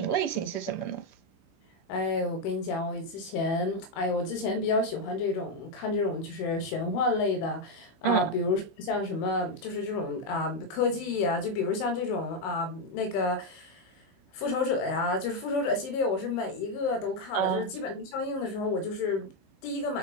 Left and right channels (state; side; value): late; right; 15 ms